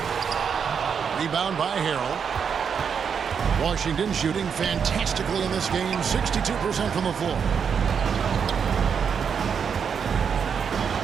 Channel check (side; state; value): left; quieter; 6.8 dB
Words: Rebound by Harrell. Washington shooting fantastically in this game, 62% from the floor.